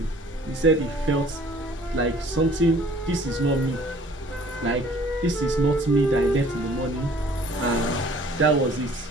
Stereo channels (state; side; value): normal; both; correlation 0.54